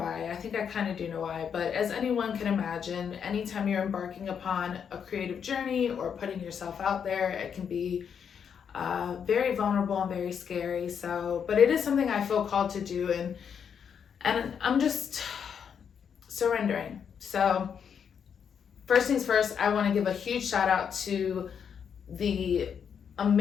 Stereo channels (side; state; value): right; quieter; 7.4 dB